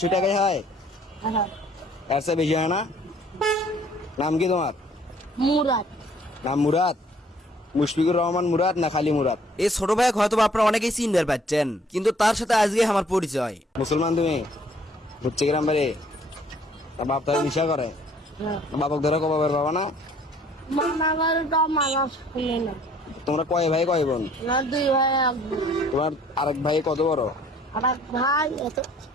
টাকাই হয়? এর চেয়ে বেশি হয় না? নাম কি তোমার? মুরাদ। নাম মুরাদ? মুশফিকুর রহমান মুরাদ না খালি মুরাদ? এই ছোট ভাই হয়তো আপনারা অনেকেই চিনতে পাচ্ছেন, কিন্তু তার সাথে আজকে আমার পরিচয়। মুসলমান তুমি? হচ্ছে গ্রাম বাড়ি? বাপ তারা নিশা করে? বাপক ধরে কবে বাবা না? মামাবাড়িটা মানুষ শুনে না। তোমরা কয় ভাই কয় বোন? না 2 ভাই 1 বোন। তোমার আরেক ভাই কত বড়? আর এক ভাই এত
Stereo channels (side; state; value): both; normal; correlation 0.59